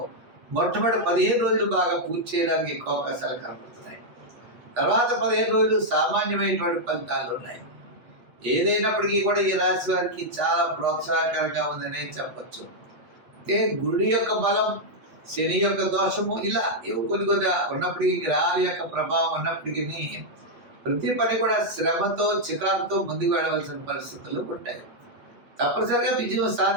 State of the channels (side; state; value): left; late; 8.3 ms